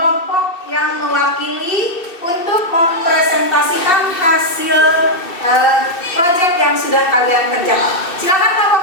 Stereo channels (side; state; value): right; late; 2.7 ms